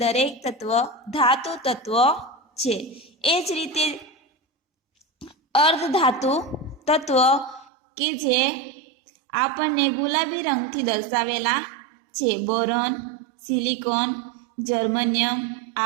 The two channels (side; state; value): left; drops out; at 7.7 s